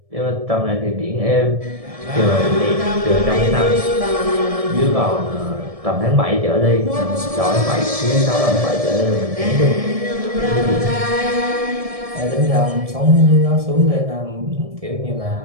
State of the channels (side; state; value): left; late; 1.7 ms